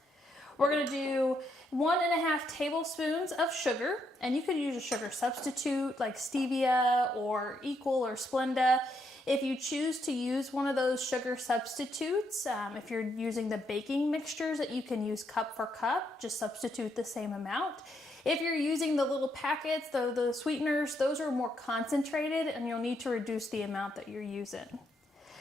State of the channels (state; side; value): normal; both; correlation 0.77